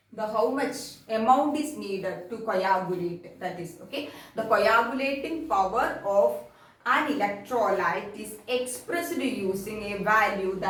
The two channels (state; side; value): identical; both; correlation 1.00